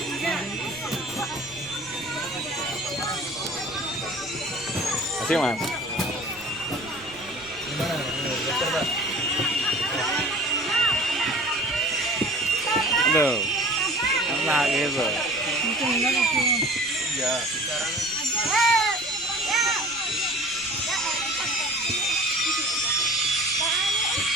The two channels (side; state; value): right; noise; rumble, 23 dB below the sound